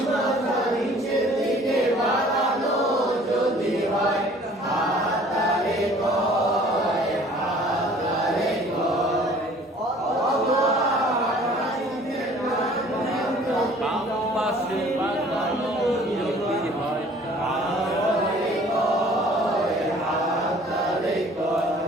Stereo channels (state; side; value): normal; both; correlation 0.52